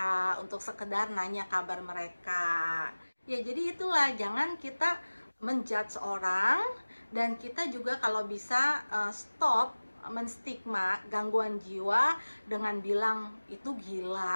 untuk sekedar nanya kabar mereka. Ya jadi itulah, jangan kita menjudge orang, dan kita juga kalau bisa stop menstigma gangguan jiwa dengan bilang itu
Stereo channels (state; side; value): inverted; both; correlation -1.00